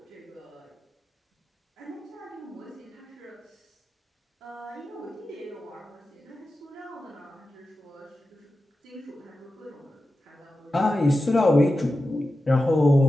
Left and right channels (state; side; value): normal; both; correlation 0.92